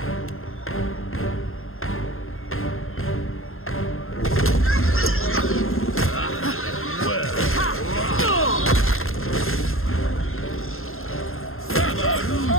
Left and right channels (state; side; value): late; right; 0.61 ms